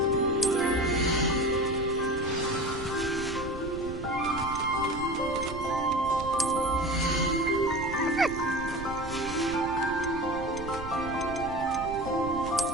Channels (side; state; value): right; noise; rumble, 11 dB below the sound